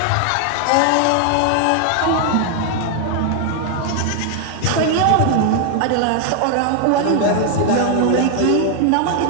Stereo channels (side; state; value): both; different; correlation 0.00